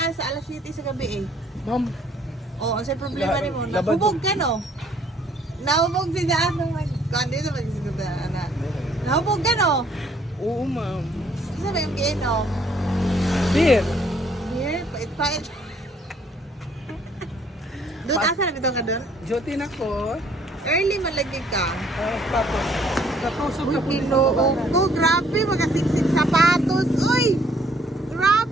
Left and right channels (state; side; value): normal; both; correlation 0.63